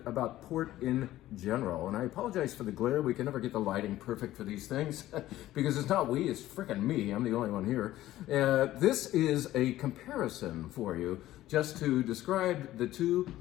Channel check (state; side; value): quieter; right; 14.7 dB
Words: about port in general. And I apologize for the glare. We can never get the lighting perfect for these things because it's not we, it's frickin' me. I'm the only one here. This is a comparison for you just to describe the 2